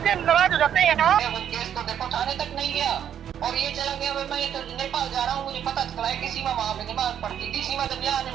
नाराज हो जाते हैं ना। केस तो देखो थाने तक नहीं गया और ये चला गया। मैं तो नेपाल जा रहा हूँ, मुझे पता चला है कि सीमा वहाँ पे नमाज पढ़ती थी। सीमा जब यहाँ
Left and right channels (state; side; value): quieter; left; 9.4 dB